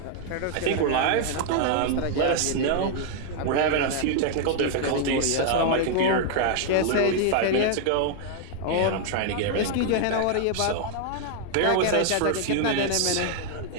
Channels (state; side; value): different; both; correlation 0.00